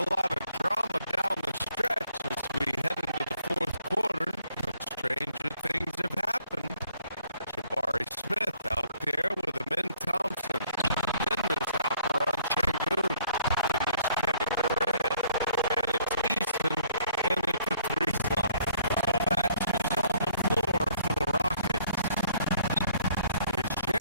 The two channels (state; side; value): inverted; both; correlation -0.63